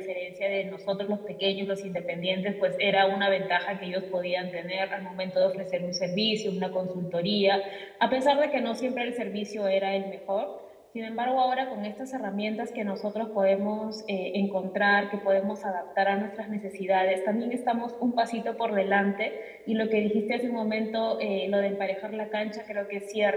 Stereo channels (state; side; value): identical; both; correlation 1.00